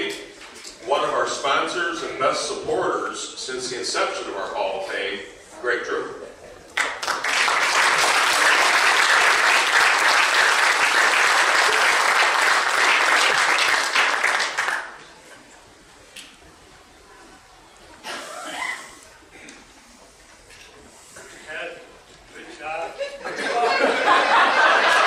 one of our sponsors and best supporters since the inception of our Hall of Fame, Greg True. Ed, good job.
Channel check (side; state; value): both; identical; correlation 1.00